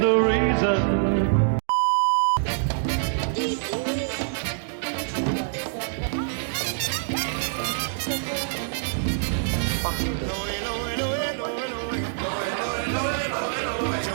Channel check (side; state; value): left; silent; digital silence